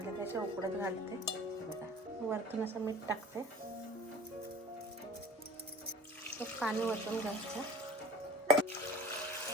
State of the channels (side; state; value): both; normal; correlation 0.43